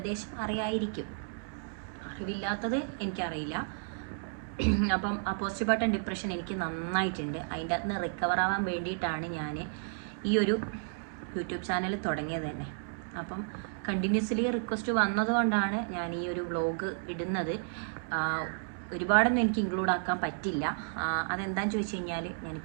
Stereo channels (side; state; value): left; silent; digital silence